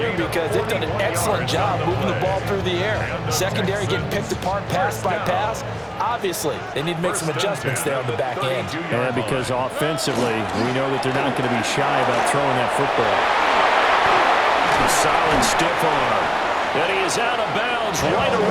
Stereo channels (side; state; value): both; identical; correlation 1.00